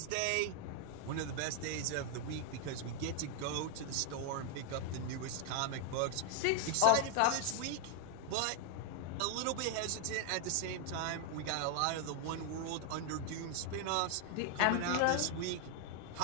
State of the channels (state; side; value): different; both; correlation 0.00